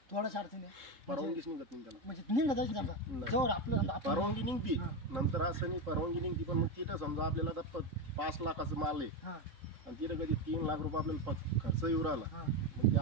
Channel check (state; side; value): late; left; 3.7 ms